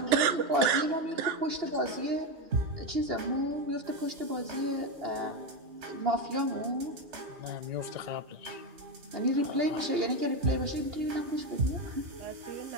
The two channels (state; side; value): late; left; 2.8 ms